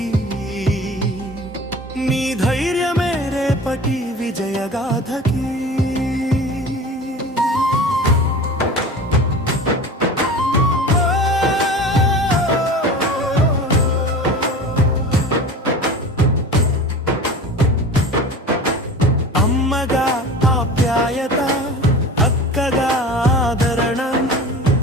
నీ ధైర్యమే రేపటి విజయగాథకి. అమ్మగా ఆప్యాయత, అక్కగా ఆదరణ,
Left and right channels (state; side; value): normal; both; correlation 0.36